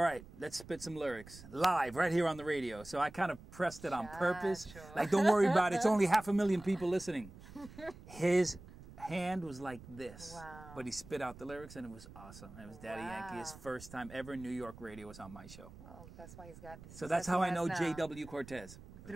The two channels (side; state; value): right; noise; rumble, 17 dB below the sound